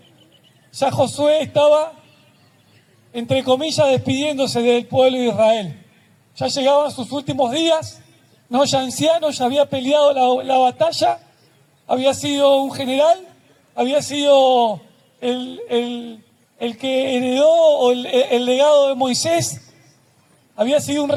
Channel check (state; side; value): identical; both; correlation 1.00